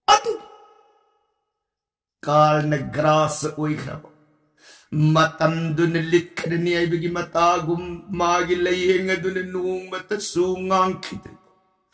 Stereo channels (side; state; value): both; identical; correlation 1.00